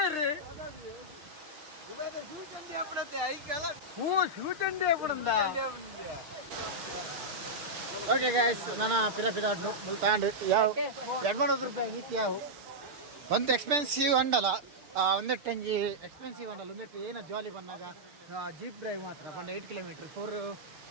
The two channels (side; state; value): left; late; 6.5 ms